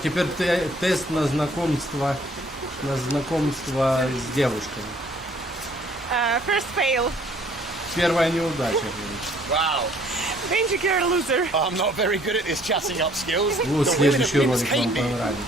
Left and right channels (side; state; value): both; normal; correlation 0.59